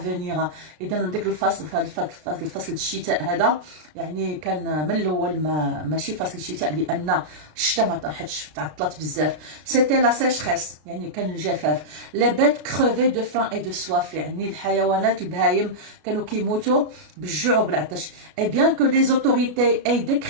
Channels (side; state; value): left; late; 33 ms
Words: إذا ديك الفصل الفصل الشتاء هذا يعني كان من الأول ماشي فصل الشتاء لأن الشتاء ما طاحتش، تعطلت بزاف. c'était la sécheresse يعني كان الجفاف. les bêtes crevaient de faim et de soif، يعني الحيوانات البهايم كانوا كيموتوا بالجوع وبالعطش. et bien que les autorités aient